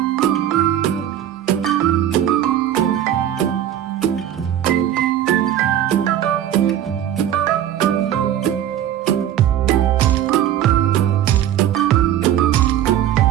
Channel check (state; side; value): quieter; left; 11.1 dB